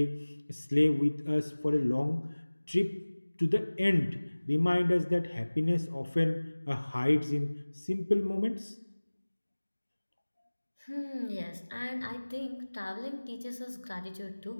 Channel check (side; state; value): both; inverted; correlation -1.00